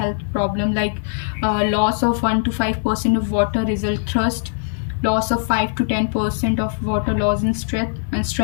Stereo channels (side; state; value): right; silent; digital silence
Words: problem like loss of 1 to 5% of water result thrust, loss of 5 to 10% of water loss in